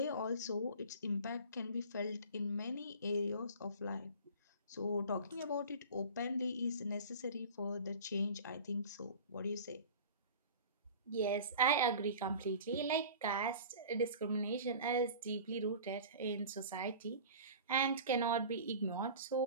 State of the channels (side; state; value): both; inverted; correlation -0.39